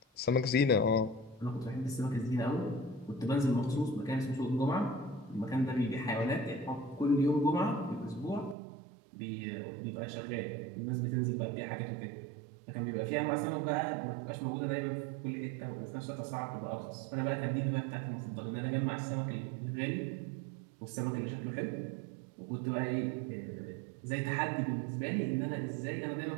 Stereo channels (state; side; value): drops out; left; at 8.6 s